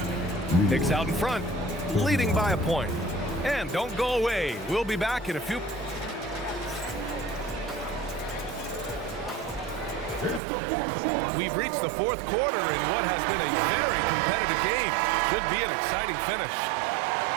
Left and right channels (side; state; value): left; drops out; at 10.4 s